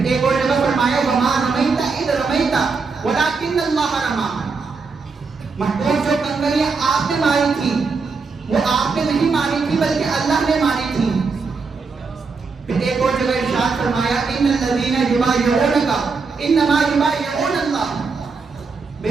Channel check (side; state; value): left; quieter; 4.7 dB